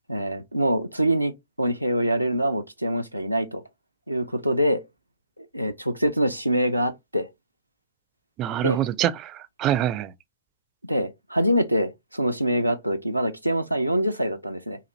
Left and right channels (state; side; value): inverted; both; correlation -0.71